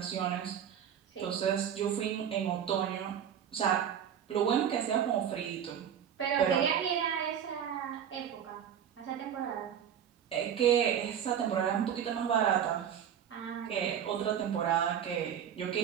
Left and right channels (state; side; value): quieter; left; 8.9 dB